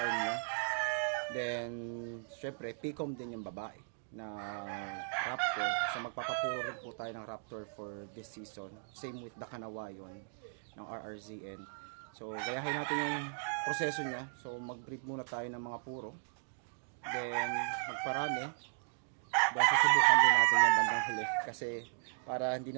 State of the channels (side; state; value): left; silent; digital silence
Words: niya. Then, syempre, P-comb din yung babae na Raptor. So, magpapapuro rin po tayo ng Raptor for this season. Same with the Kanawayon ng RRZN. So, gayahin natin yung proseso niya. So, mag-breed muna tayo ng mga puro. Then, magparami. Then, susubukan din natin yung bandang huli. Kasi, para hindi